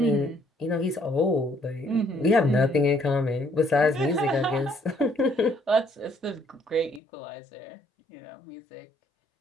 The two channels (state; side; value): drops out; right; at 7.0 s